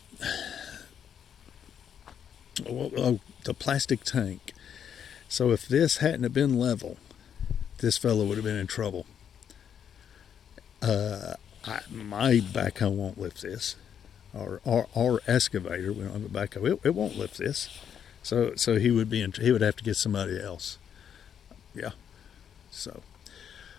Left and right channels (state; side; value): quieter; right; 8.4 dB